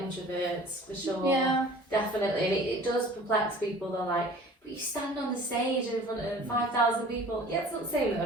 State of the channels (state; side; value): normal; both; correlation 0.46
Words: introverts, for sure. Yeah. Definitely. And it does perplex people. They're like, But you stand on the stage in front of 5,000 people. Yeah, it's not the same